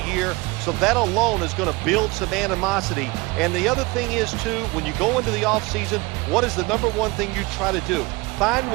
so that alone is going to build some animosity. And the other thing is, too, when you go into the offseason, what is the number one thing you try to do? Find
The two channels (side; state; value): left; quieter; 23.9 dB